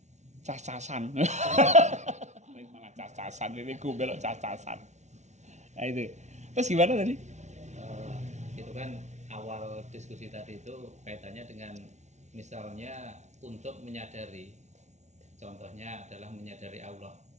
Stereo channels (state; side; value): late; left; 0.33 ms